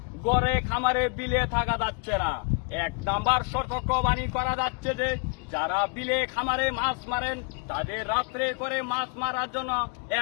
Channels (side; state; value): right; quieter; 36.6 dB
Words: গড়ে খামারে বিলে থাকা যাচ্ছে না। এক নাম্বার সতর্কবাণী করা যাচ্ছে যে যারা বিলে খামারে মাছ মারেন তাদের রাত্রে করে মাছ মারার জন্য